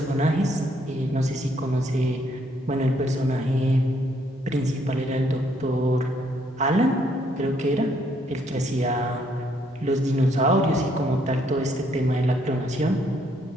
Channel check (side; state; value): both; normal; correlation 0.70